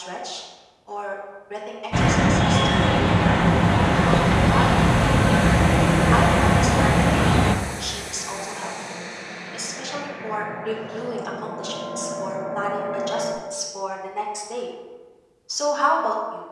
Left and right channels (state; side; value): identical; both; correlation 1.00